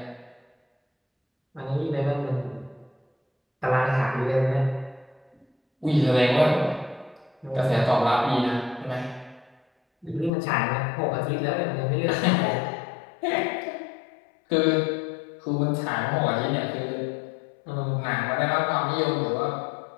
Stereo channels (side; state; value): right; drops out; at 10.3 s